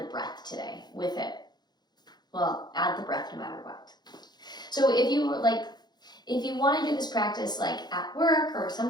breath today with it. Well, add the breath no matter what. So if you want to do this practice like at work or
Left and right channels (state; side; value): late; right; 0.20 ms